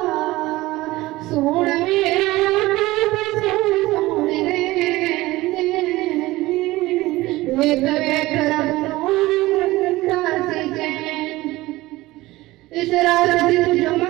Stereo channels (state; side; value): quieter; left; 18.7 dB